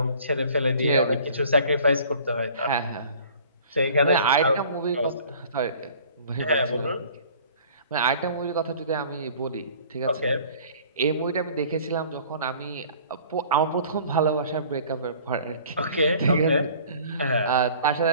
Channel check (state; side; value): inverted; both; correlation -0.50